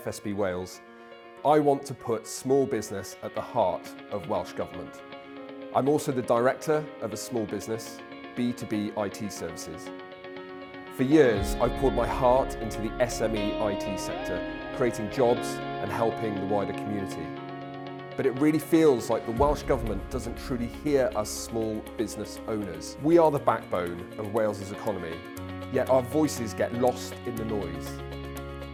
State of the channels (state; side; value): identical; both; correlation 1.00